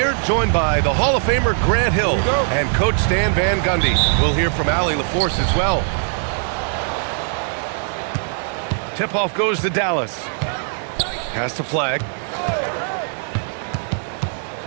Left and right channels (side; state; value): left; silent; 66 dB below the other